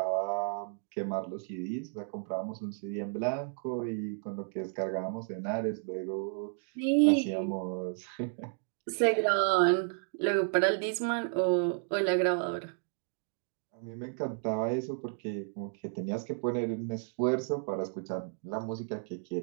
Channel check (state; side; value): silent; left; 56 dB below the other